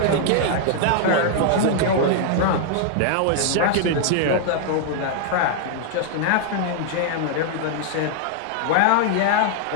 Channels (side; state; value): both; different; correlation -0.01